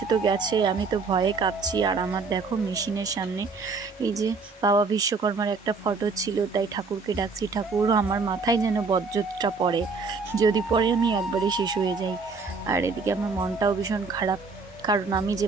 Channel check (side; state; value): left; quieter; 4.5 dB